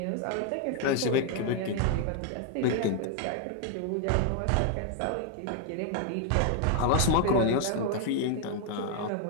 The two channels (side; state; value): both; different; correlation 0.00